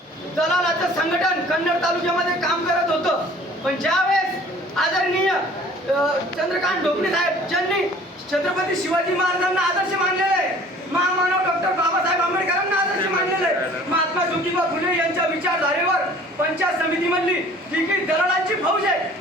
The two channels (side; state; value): both; normal; correlation 0.50